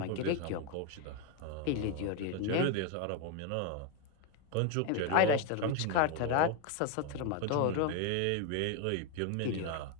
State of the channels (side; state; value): both; different; correlation 0.02